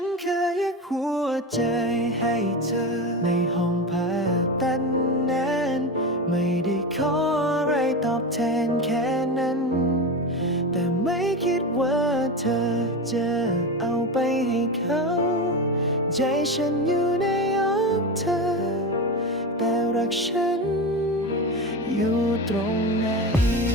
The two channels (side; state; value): both; normal; correlation 0.21